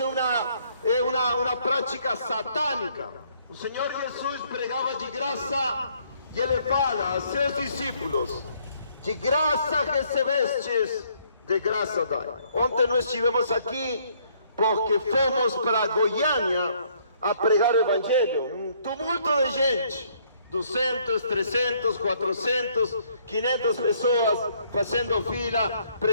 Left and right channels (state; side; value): inverted; both; correlation -0.66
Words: é uma prática satânica. O Senhor Jesus pregava de graça e Ele fala a seus discípulos: de graça recebestes, de graça dai. Ontem nós estivemos aqui porque fomos para Goiânia a pregar o Evangelho. Um tumulto de gente, 200, 300, 400, 500 pessoas fazendo fila.